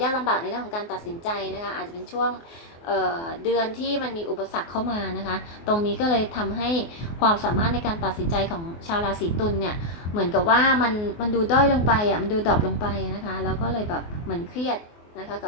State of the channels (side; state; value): right; late; 24 ms